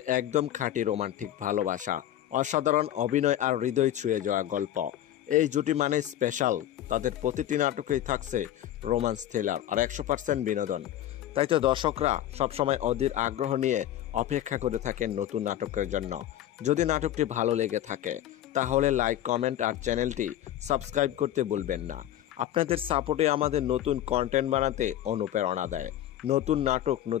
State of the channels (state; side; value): quieter; right; 12.3 dB